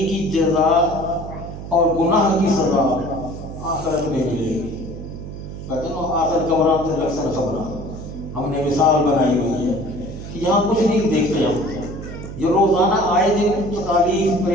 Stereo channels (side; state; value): right; noise; hum, 10 dB below the sound